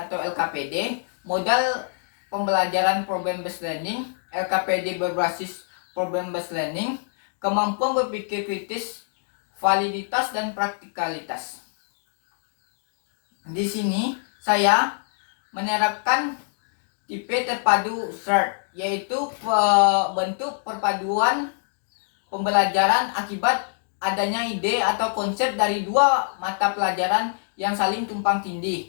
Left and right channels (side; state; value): right; silent; digital silence